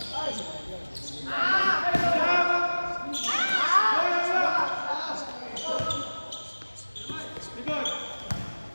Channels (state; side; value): inverted; both; correlation -1.00